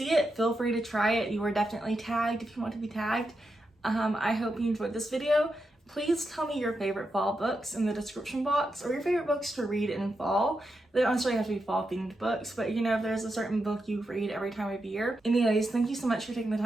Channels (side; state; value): both; normal; correlation 0.86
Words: it, feel free to try it. You are definitely tagged if you want to be tagged. I hope you enjoyed this video. Please tell me your favorite fall books in the description box, or your favorite books to read in fall. They don't necessarily have to be fall themed books, but you know, if there's a certain book you read every time of year. Anyways, thank you so much for taking the